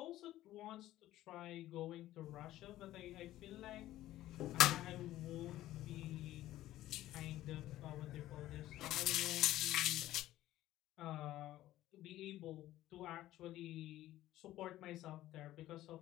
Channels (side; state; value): right; quieter; 14.7 dB